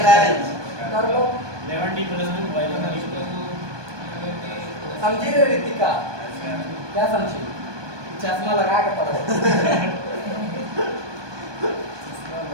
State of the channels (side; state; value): left; late; 1.2 ms